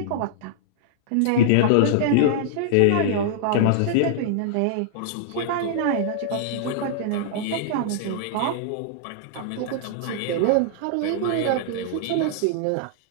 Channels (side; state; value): both; different; correlation -0.02